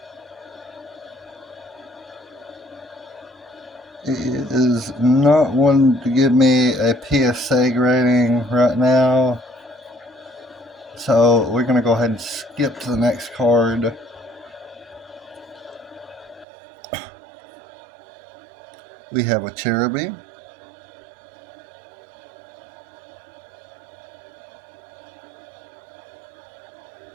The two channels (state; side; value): drops out; left; at 16.4 s